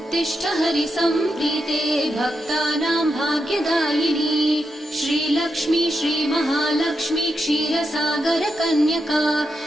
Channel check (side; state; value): both; normal; correlation 0.86